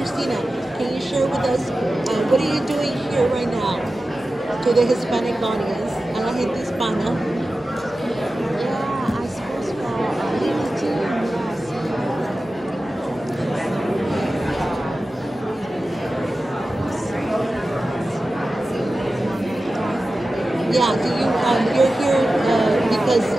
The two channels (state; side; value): normal; both; correlation 0.94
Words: can you share with us what are you doing here right now to the Hispanic audience, a la gente hispana? Yeah, I suppose for Lily Trương, Yeah, do you, you're here because